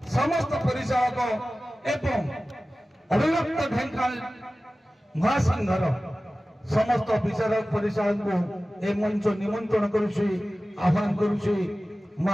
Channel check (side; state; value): both; normal; correlation 0.96